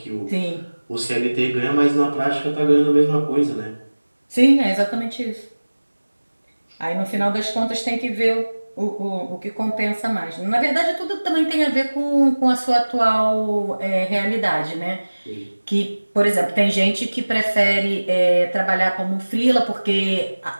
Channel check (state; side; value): inverted; both; correlation -1.00